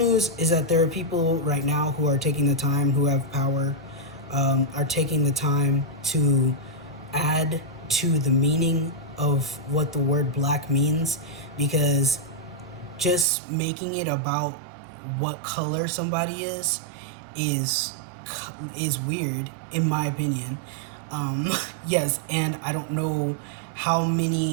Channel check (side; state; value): left; drops out; at 13.2 s